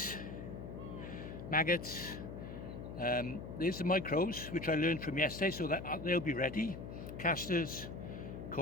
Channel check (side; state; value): left; noise; hum, 9 dB below the sound